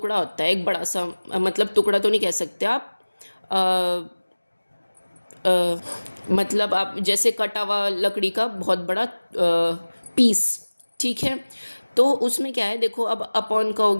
होता है, एक बड़ा सा, मतलब टुकड़ा तो नहीं कह सकते आप, अ, मतलब आप जैसे कटा हुआ लकड़ी का बहुत बड़ा पीस। ठीक है, तो उसमें क्या है, देखो अब अपॉन का हो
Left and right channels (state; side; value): inverted; both; correlation -1.00